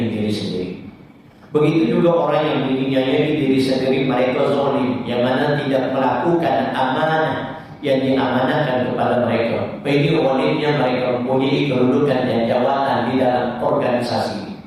diri sendiri. Begitu juga orang yang menginginkan diri sendiri, mereka zalim, yang mana tidak melakukan amanah yang diamanahkan kepada mereka. Ini zalimnya mereka mempunyai kedudukan dan jawatan di dalam organisasi.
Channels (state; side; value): identical; both; correlation 1.00